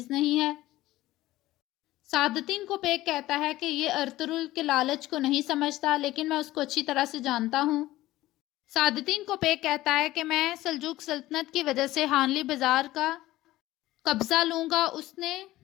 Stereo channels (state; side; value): quieter; right; 16.5 dB